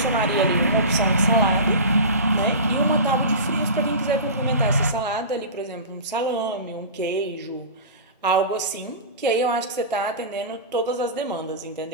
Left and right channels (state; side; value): inverted; both; correlation -0.30